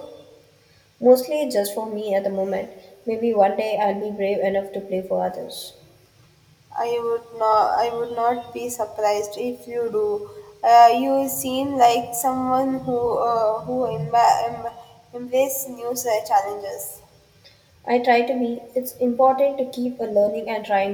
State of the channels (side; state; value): both; identical; correlation 1.00